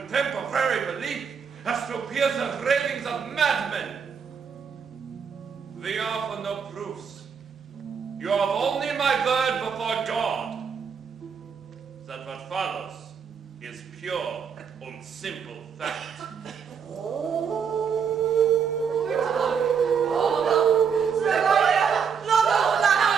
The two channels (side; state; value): left; quieter; 6.7 dB